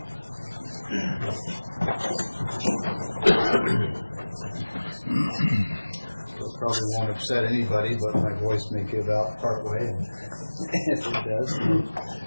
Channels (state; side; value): inverted; both; correlation -1.00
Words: It probably won't upset anybody, but my voice may give out part way, and if it does,